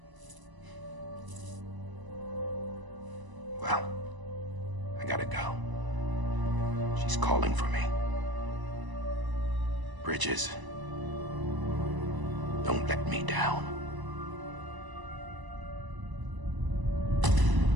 Well, I gotta go. She's calling for me. Bridges, don't let me down.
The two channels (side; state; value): left; late; 1.0 ms